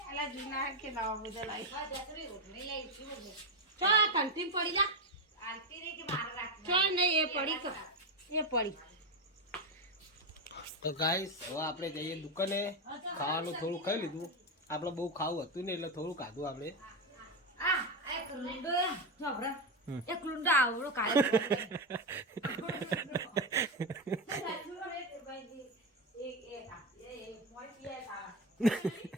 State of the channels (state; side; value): normal; both; correlation 0.11